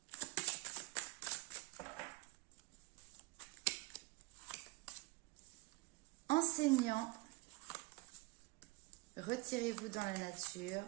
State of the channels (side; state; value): left; quieter; 24.8 dB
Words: ? Enseignant, retirez-vous dans la nature,